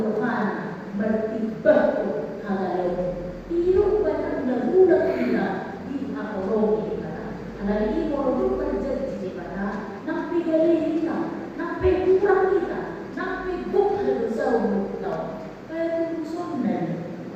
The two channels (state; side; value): identical; both; correlation 1.00